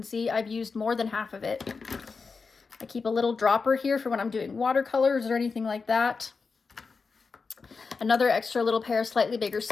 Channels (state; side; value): quieter; right; 4.8 dB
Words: see, I've used more than half of it. I keep a little dropper here for when I'm doing watercolors or anything like that. Another extra little pair of slightly bigger